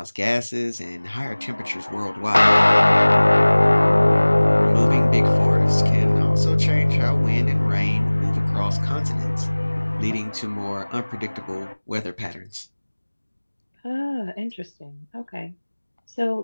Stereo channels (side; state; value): both; inverted; correlation -1.00